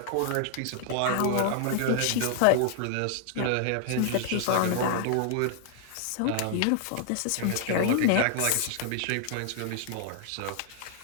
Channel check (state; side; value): different; both; correlation 0.00